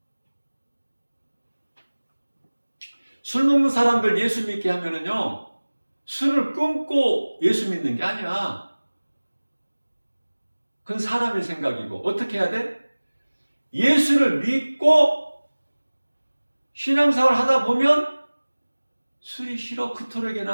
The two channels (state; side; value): inverted; both; correlation -1.00